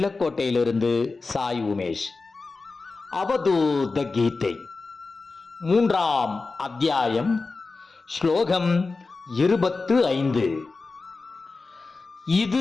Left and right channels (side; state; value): right; quieter; 3.9 dB